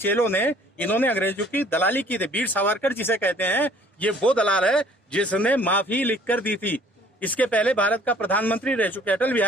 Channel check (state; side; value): normal; both; correlation 0.55